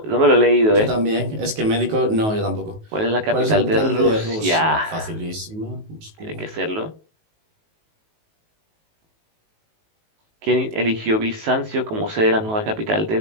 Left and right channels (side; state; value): left; late; 19 ms